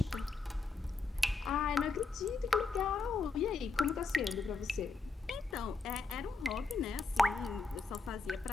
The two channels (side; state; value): right; quieter; 3.9 dB